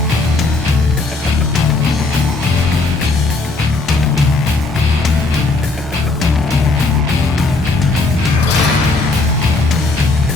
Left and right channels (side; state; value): right; quieter; 3.4 dB